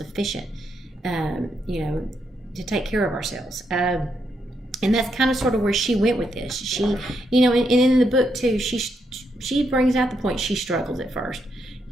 you know, to take care of ourselves. And that's kind of sort of where she went with this. She, you know, and in the book too, she brings out the point she struggles at first,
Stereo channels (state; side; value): normal; both; correlation 0.79